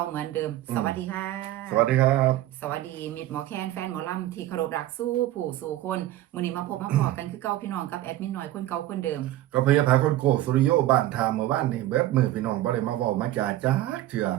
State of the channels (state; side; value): quieter; left; 14.5 dB